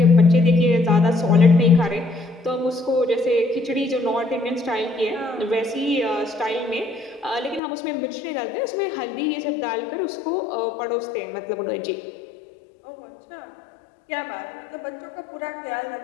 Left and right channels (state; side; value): drops out; right; at 7.6 s